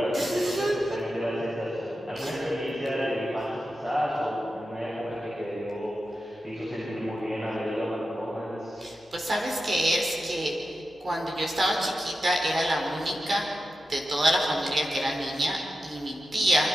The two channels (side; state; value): both; normal; correlation 0.91